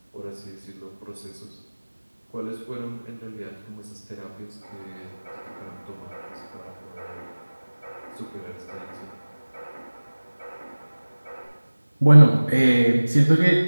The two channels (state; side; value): inverted; both; correlation -1.00